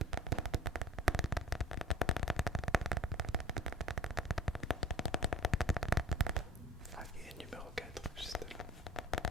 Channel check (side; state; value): both; normal; correlation 0.42